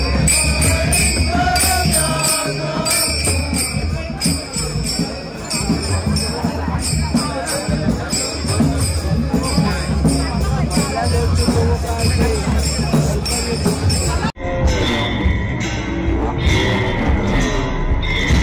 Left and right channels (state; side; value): identical; both; correlation 1.00